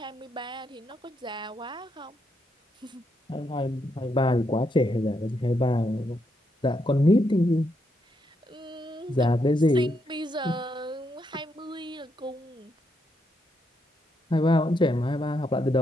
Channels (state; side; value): normal; both; correlation 0.79